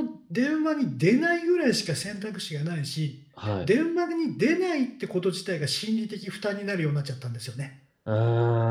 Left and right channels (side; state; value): both; identical; correlation 1.00